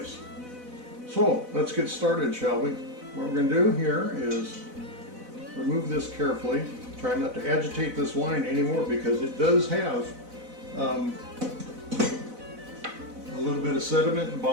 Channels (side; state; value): left; late; 4.0 ms